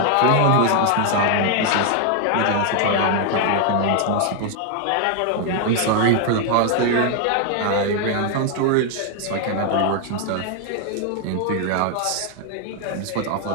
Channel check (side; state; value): both; different; correlation 0.00